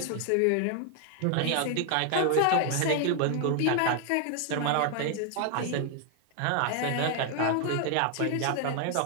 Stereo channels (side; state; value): both; different; correlation 0.00